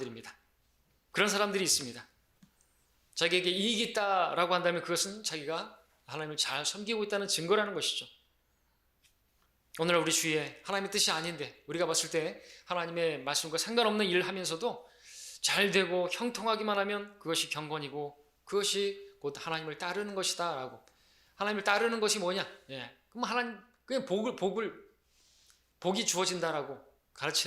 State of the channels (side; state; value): both; identical; correlation 1.00